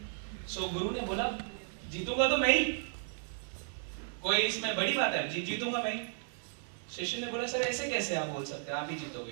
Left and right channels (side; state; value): left; silent; digital silence